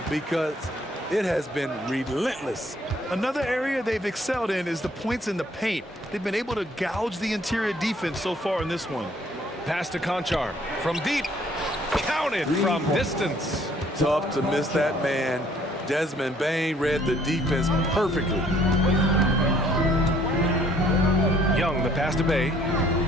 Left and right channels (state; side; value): normal; both; correlation 0.62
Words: because it has been relentless. Another area they've excelled in is the points in the paint. They've been able to gouge the interior defense so far in this one. Pass to Conchar from deep. Counted from distance. Tough to miss that man. Desmond Bain read the defense perfectly. Young, the pass to Bay.